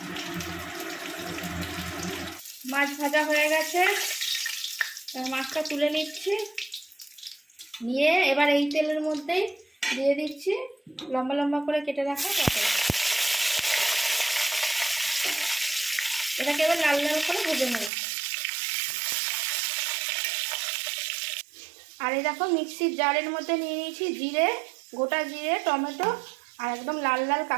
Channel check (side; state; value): left; drops out; at 17.9 s